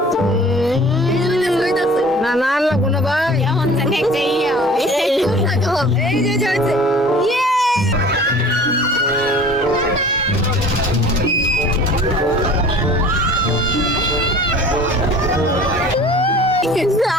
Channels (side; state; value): both; normal; correlation 0.45